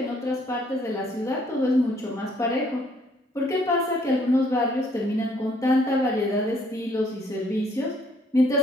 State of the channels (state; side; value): normal; both; correlation 0.65